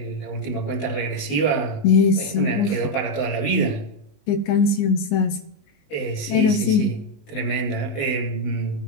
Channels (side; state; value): right; late; 19 ms